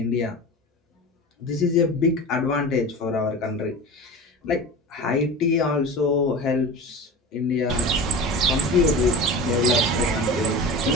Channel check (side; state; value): both; normal; correlation 0.31